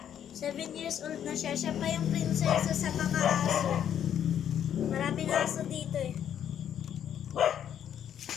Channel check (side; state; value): right; quieter; 9.6 dB